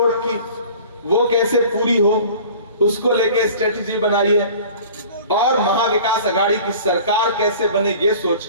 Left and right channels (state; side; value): inverted; both; correlation -0.44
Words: की, वो कैसे पूरी हो, उसको लेके स्ट्रेटेजी बनाइए, और महाविकास आघाड़ी की सरकार कैसे बने ये सोच